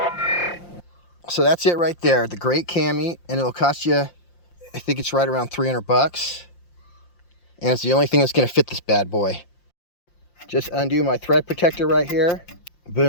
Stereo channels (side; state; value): right; late; 5.7 ms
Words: So that's it right there, the Great Cami, and it'll cost you, I think it's right around 300 bucks. And it's the only thing that's gonna fit this bad boy. Just undo my thread protector right here.